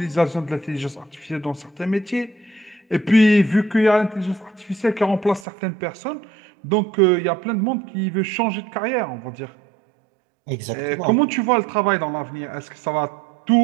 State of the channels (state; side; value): drops out; left; at 5.5 s